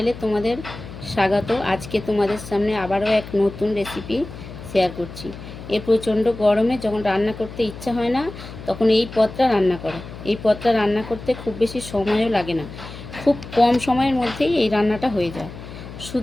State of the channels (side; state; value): left; noise; hum, 13 dB below the sound